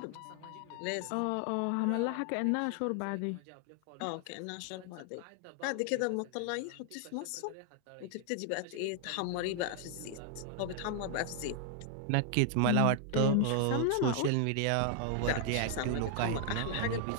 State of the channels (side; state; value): both; different; correlation 0.00